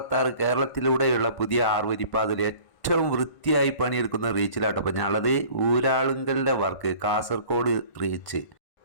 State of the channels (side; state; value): right; late; 1.5 ms